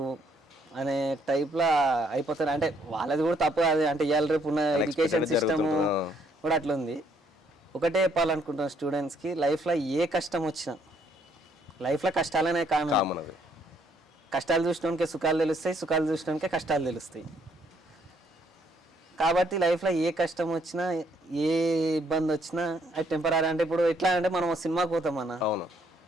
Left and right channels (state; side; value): normal; both; correlation 0.69